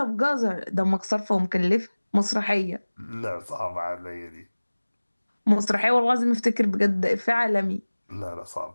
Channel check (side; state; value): both; inverted; correlation -1.00